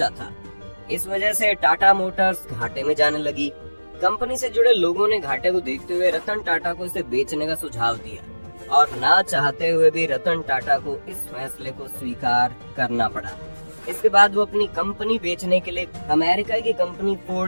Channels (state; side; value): inverted; both; correlation -1.00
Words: था। इस वजह से टाटा मोटर्स घाटे में जाने लगी। कंपनी से जुड़े लोगों ने घाटे को देखते हुए रतन टाटा को इसे बेचने का सुझाव दिया और ना चाहते हुए भी रतन टाटा को इस फैसले को स्वीकार करना पड़ा। इसके बाद वो अपनी कंपनी बेचने के लिए अमेरिका की कंपनी